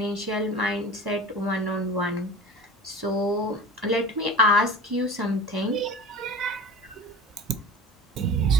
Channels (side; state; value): both; normal; correlation 0.35